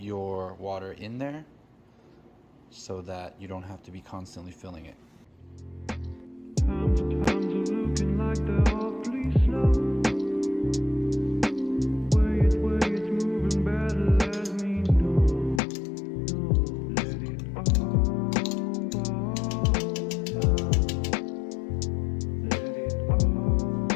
water in there so that you don't have to be constantly filling it.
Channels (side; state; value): right; drops out; at 15.6 s